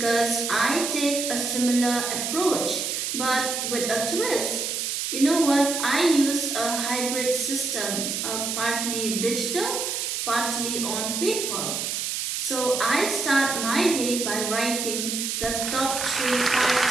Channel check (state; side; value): noise; right; hiss, 2 dB below the sound